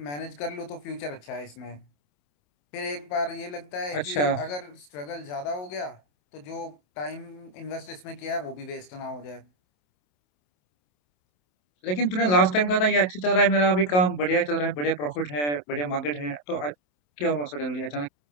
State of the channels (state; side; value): late; right; 27 ms